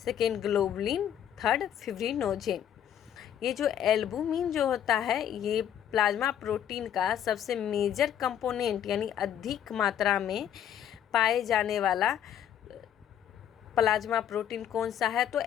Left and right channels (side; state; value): right; quieter; 9.9 dB